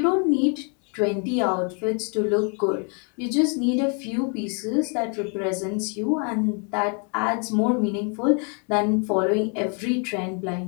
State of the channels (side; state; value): right; quieter; 38.7 dB